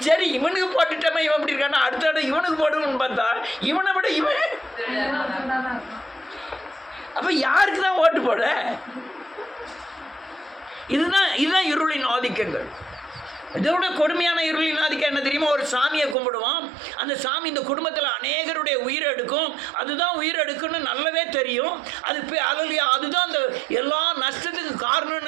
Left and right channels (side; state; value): left; drops out; at 16.2 s